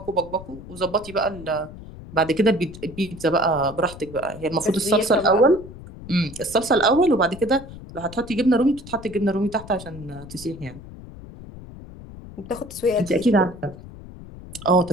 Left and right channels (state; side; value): noise; left; rumble, 15 dB below the sound